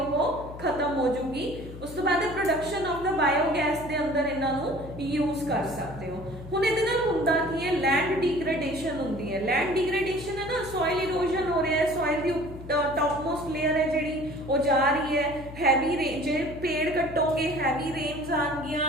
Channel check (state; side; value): noise; left; hum, 13 dB below the sound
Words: ਖਤਮ ਹੋ ਜੂਗੀ। ਉਸ ਤੋਂ ਬਾਅਦ ਪ੍ਰੋਡਕਸ਼ਨ ਆਫ ਦਾ ਬਾਇਓਗੈਸ ਦੇ ਅੰਦਰ ਇਹਨਾਂ ਨੂੰ ਯੂਜ਼ ਕਰ ਸਕਦੇ ਹੋ। ਹੁਣ ਇਹਦੇ ਨਾਲ ਹੁੰਦਾ ਕੀ ਹੈ, ਲੈਂਡ ਡੀਗ੍ਰੇਡੇਸ਼ਨ ਹੁੰਦੀ ਹੈ। ਲੈਂਡ ਡੀਗ੍ਰੇਡੇਸ਼ਨ ਹੈ ਨਾ, ਸੋਇਲ ਇਰੋਜ਼ਨ ਹੋ ਰਿਹਾ ਹੈ, ਸੋਇਲ ਦੀ ਟੌਪਮੋਸਟ ਲੇਅਰ ਹੈ ਜਿਹੜੀ ਉਹ ਜਾ ਰਹੀ ਹੈ। ਹੈਵੀ ਰੇਨ, ਜੇ ਪੇੜ ਕੱਟੋਗੇ ਹੈਵੀ ਰੇਨਸ